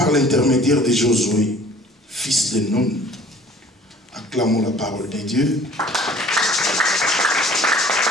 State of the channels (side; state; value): both; normal; correlation 0.50